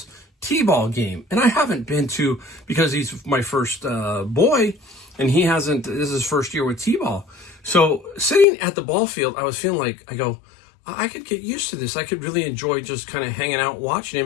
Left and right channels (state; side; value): drops out; right; at 8.5 s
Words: T-ball game, and I haven't been to, because he's my first boy, and he hasn't, this is his first year with T-ball. So sitting at the ball field, I was feeling like, I could get used to this. I could really enjoy just kind of hanging out, watching